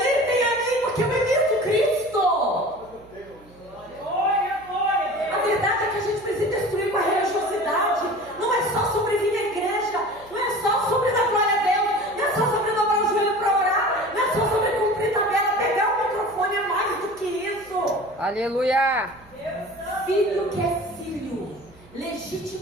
a mim, porque eu imito Cristo. A verdade é que a gente precisa destruir com a religiosidade. Não é só sobre vir à igreja, não é só sobre dar glória a Deus, não é só sobre dobrar o joelho para orar, não é só sobre cumprir tabela, pegar o microfone, é mais do que isso. Aleluia! Filho que é filho,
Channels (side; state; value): right; noise; hum, 26 dB below the sound